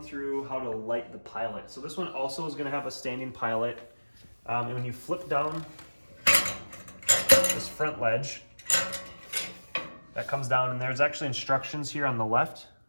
through how to light the pilot. So this one also is gonna have a standing pilot. And when you flip down this front ledge, that comes down, and there's actually instructions here on the left.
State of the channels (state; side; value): inverted; both; correlation -1.00